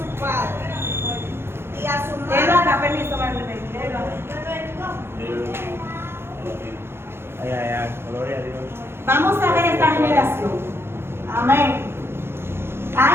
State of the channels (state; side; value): late; left; 0.12 ms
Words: padre y a su madre. Léelo acá, permiso, Marlene. Léelo. Ay, ay, ay, gloria a Dios. Vamos a ver esta generación. Amén.